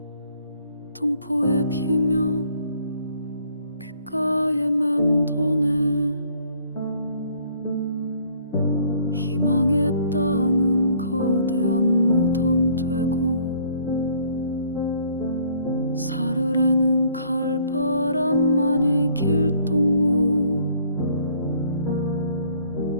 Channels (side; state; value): both; inverted; correlation -0.61